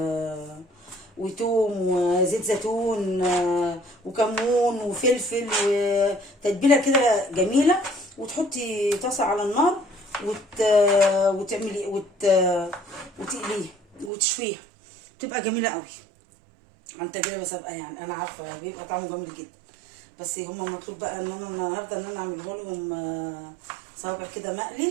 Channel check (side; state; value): left; drops out; at 14.1 s